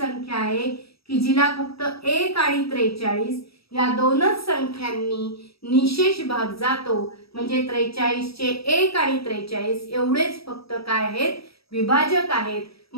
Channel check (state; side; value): late; right; 0.76 ms